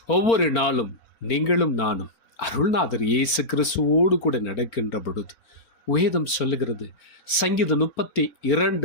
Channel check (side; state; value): right; late; 4.4 ms